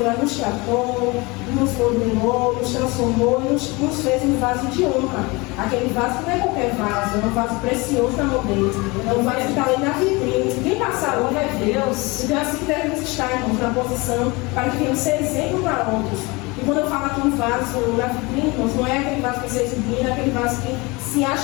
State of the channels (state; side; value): quieter; right; 25.1 dB